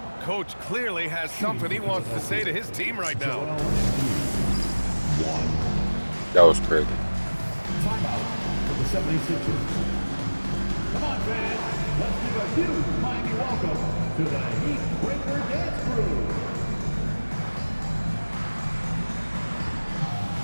Coach clearly has something he wants to say to his team right now. That was crazy. Timeout for the 76ers. Come on, fans. Let's give a huge mighty welcome to the Heat Breaker Dance Crew.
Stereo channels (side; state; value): both; inverted; correlation -1.00